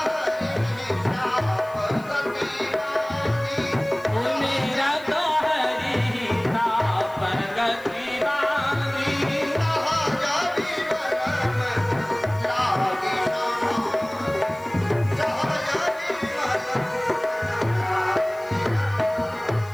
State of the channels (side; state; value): left; noise; hiss, 25 dB below the sound